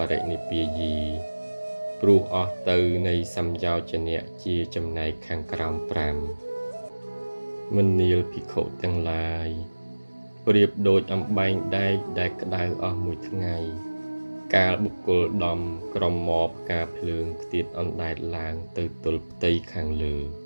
រិនិព្វាយី ព្រោះអស់ទៅនៃសំយោជនៈជាចំណែកខាងក្រោម5មនាលភិក្ខុទាំងឡាយប្រៀបដូចអំបែងដែកដែលក្តៅអស់មួយថ្ងៃកាលបុគ្គលដំក្រមមកផ្កាភ្លើងខ្ទាតអណ្ដែតឡើងទៅទល់ផ្ទៃខាងលើ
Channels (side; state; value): both; inverted; correlation -1.00